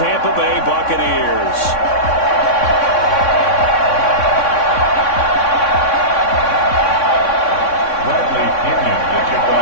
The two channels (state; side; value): late; right; 3.6 ms